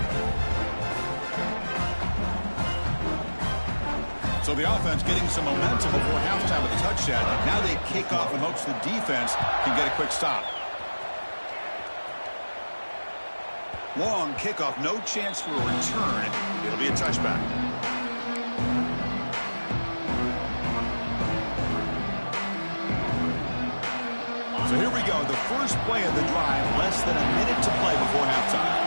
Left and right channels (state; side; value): inverted; both; correlation -1.00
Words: So the offense getting some momentum before halftime with a touchdown. Now they kick off in hopes the defense can get a quick stop. Long kickoff, no chance for a return. It'll be a touchback. So here we go, the first play of the drive, less than a minute to play before halftime.